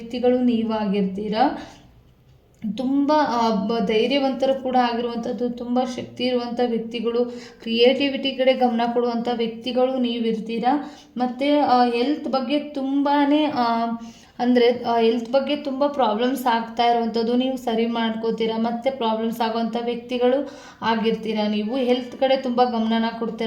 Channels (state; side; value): identical; both; correlation 1.00